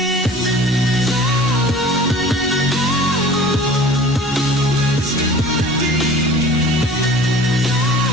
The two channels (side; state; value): both; normal; correlation 0.44